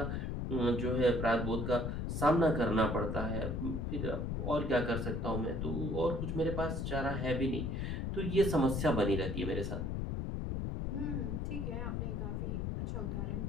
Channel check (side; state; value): left; noise; rumble, 1 dB below the sound